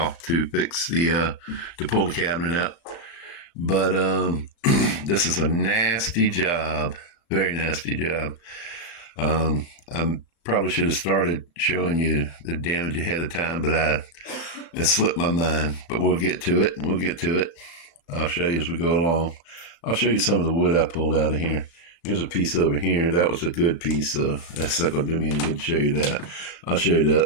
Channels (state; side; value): late; right; 35 ms